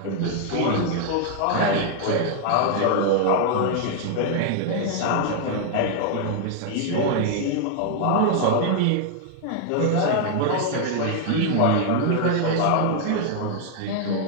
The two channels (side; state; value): both; different; correlation 0.00